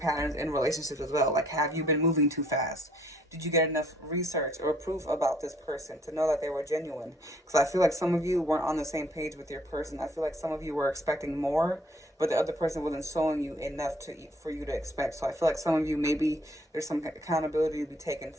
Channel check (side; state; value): both; normal; correlation 0.62